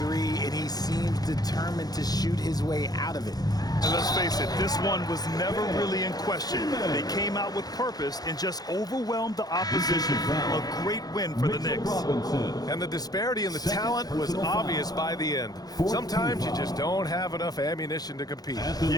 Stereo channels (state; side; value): late; right; 0.19 ms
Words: and he seems determined to shoot his way out of it. And let's face it, this one was never really in question. They came out with purpose and just overwhelmed the opposition. A great win for the Knicks. And the disparity in the talent was obvious by the end. Sometimes you just don't have enough ammunition to compete.